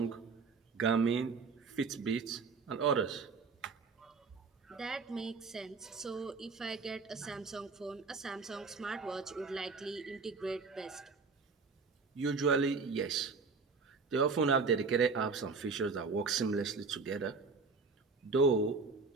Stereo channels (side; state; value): left; quieter; 4.6 dB